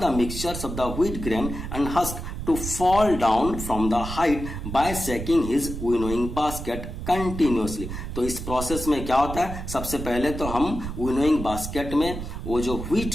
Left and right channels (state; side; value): noise; right; rumble, 7 dB below the sound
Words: mixtures of the wheat grain and husk to fall down from the height by shaking his winnowing basket continuously। तो इस process में क्या होता है, सबसे पहले तो हम विनोइंग बास्केट में वो जो